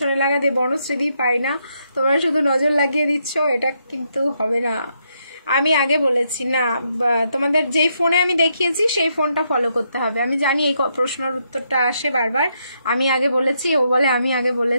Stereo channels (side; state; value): both; inverted; correlation -0.78